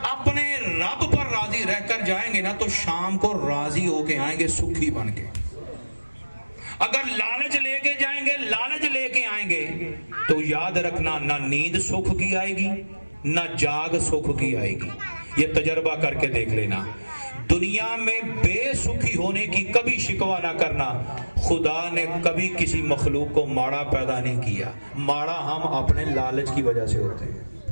اپنے رب پر راضی رہ کر جائیں گے نا تو شام کو راضی ہو کے آئیں گے، سکھی بن کے۔ اگر لالچ لے کے جائیں گے، لالچ لے کے آئیں گے تو یاد رکھنا نہ نیند سکھ کی آئے گی نہ جاگ سکھ کی آئے گی۔ یہ تجربہ کر کے دیکھ لینا۔ دنیا میں بے سکھی ہونے کی کبھی شکوہ نہ کرنا۔ خدا نے کبھی کسی مخلوق کو ماڑا پیدا نہیں کیا، ماڑا ہم اپنے لالچ کی وجہ سے ہوتے ہیں،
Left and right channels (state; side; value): inverted; both; correlation -1.00